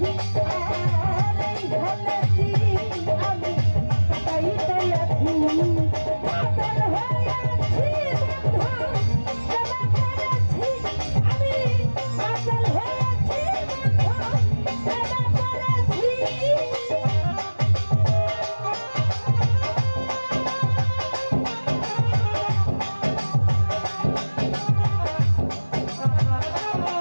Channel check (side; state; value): both; inverted; correlation -1.00